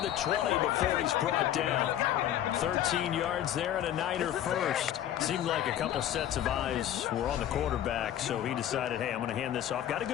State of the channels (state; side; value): quieter; right; 11.4 dB